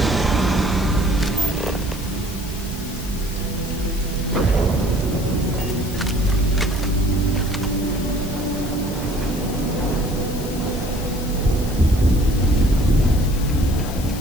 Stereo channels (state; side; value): noise; left; hiss, 14 dB below the sound